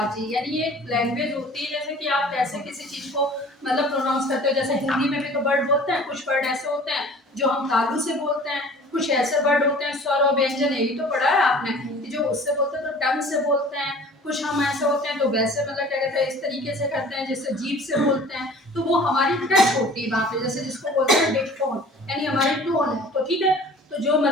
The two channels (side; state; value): both; normal; correlation 0.47